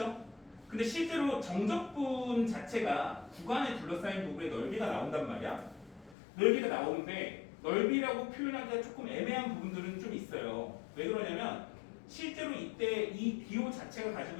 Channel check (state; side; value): drops out; right; at 6.2 s